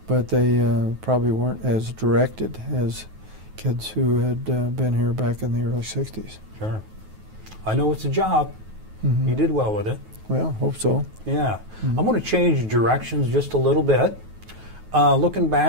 But they probably weren't as directed as kids who had been here back in the early 60s. Sure. I know it's a job. Mm-hmm. You did well with it. Well, hope so. Yeah. Mm-hmm. I'm going to change directions just a little bit. Looking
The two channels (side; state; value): left; late; 9.3 ms